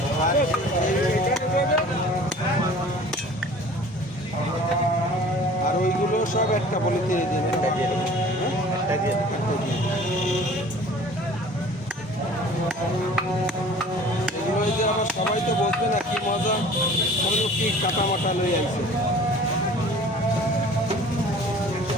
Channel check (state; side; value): normal; both; correlation 0.46